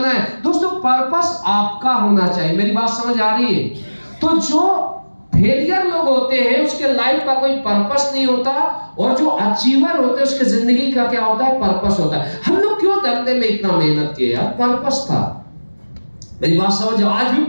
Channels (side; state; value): both; inverted; correlation -1.00